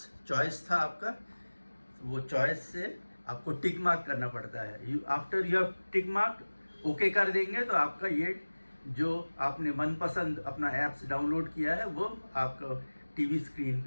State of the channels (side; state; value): both; inverted; correlation -1.00